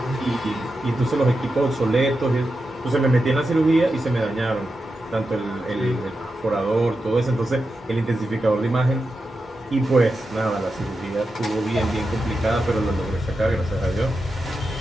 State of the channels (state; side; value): normal; both; correlation 0.89